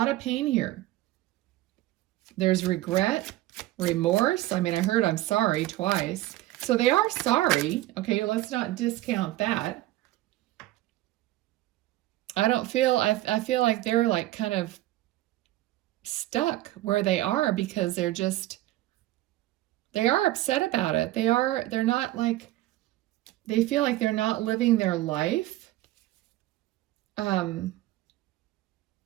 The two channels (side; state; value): left; quieter; 16.2 dB